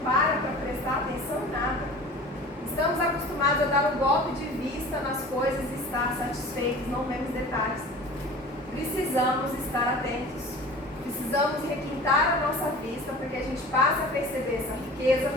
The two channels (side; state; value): both; normal; correlation 0.40